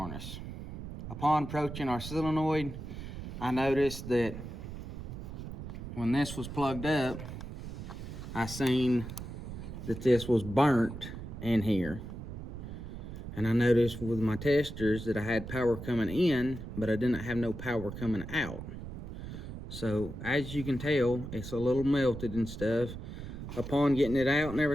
Upon approaching our solenoid, I noticed that when this was plugged up, I seen that this was burnt in here. And I noticed with my testers that I had power coming in, but I didn't have no power coming out. So as you can tell, it's a little melted and stuff. Upon getting it out and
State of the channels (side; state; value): right; noise; rumble, 9 dB below the sound